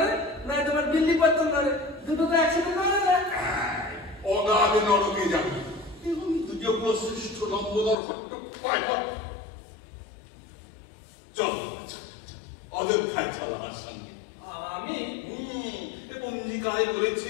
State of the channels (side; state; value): right; drops out; at 8.0 s